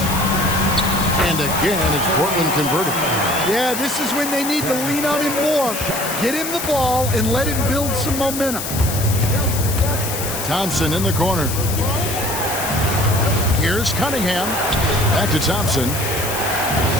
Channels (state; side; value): noise; left; hiss, 6 dB below the sound